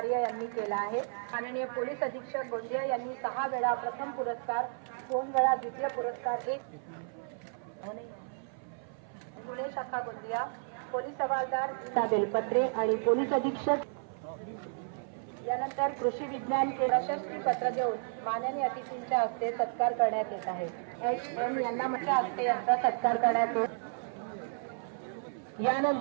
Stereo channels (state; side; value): silent; left; 56 dB below the other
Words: यांनी केलं आहे। माननीय पोलीस अधीक्षक गोंदिया यांनी 6 वेळा प्रथम पुरस्कार, 2 वेळा द्वितीय पुरस्कार, 1 पुणे शाखा गोंदिया पोलीस हवालदार बेलपत्रे आणि पोलीस अधीक्षक यानंतर कृषी विज्ञान प्रशस्ती पत्र देऊन माननीय अतिथींच्या हस्ते सत्कार करण्यात येत आहे। HM यांना माझ्या हस्ते यांचा सत्कार करण्यात येतो।